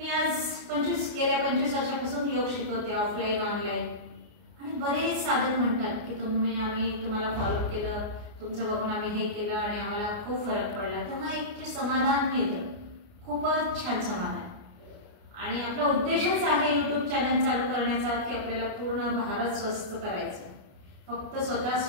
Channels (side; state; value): left; late; 29 ms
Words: आज गेल्या 25 वर्षापासून योग शिकवते, ऑफलाईन ऑनलाईन, आणि बरेच साधक म्हणतात की आम्ही तुम्हाला फॉलो केलं, तुमचं बघून आम्ही हे केलं आणि आम्हाला खूप फरक पडला। तेव्हा एक जे समाधान मिळतं, खूपच छान समाधान। आणि आपला उद्देशच आहे YouTube चॅनल चालू करण्याचा की आपल्याला पूर्ण भारत स्वस्थ करायचं। फक्त स्वतः